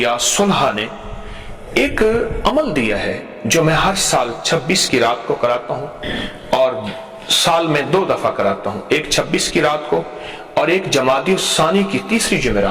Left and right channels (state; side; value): identical; both; correlation 1.00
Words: صلحاء نے ایک عمل دیا ہے جو میں ہر سال 26 کی رات کو کراتا ہوں، اور سال میں 2 دفعہ کراتا ہوں، ایک 26 کی رات کو اور ایک جمادی الثانی کی تیسری